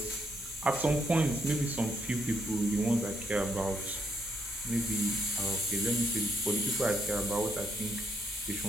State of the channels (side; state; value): both; normal; correlation 0.75